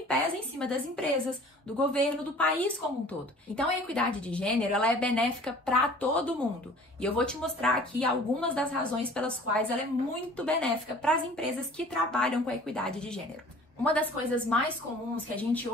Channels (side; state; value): both; normal; correlation 0.48